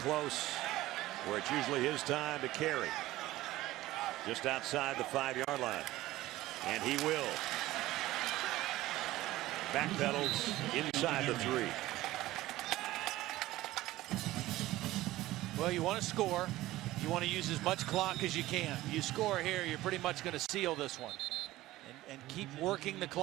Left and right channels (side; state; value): left; quieter; 16.7 dB